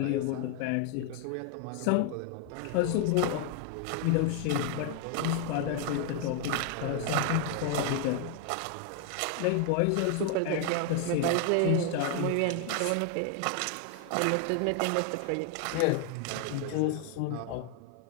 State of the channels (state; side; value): different; both; correlation 0.00